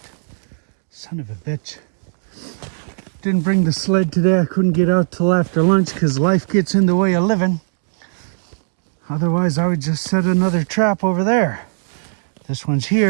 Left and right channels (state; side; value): silent; left; digital silence